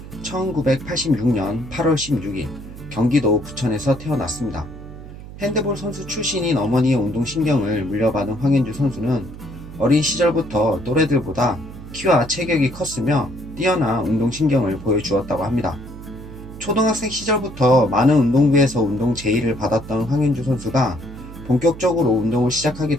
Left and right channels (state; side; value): noise; right; hum, 14 dB below the sound